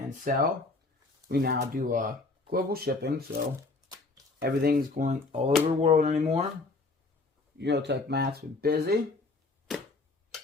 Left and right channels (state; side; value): quieter; right; 3.6 dB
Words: sell, we now do global shipping. So everything's going all over the world anymore. Autotech Matt's been busy.